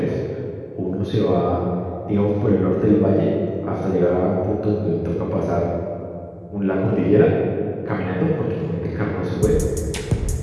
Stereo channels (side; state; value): both; identical; correlation 1.00